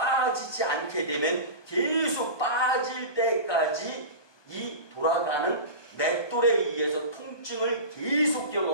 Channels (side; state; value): right; late; 1.2 ms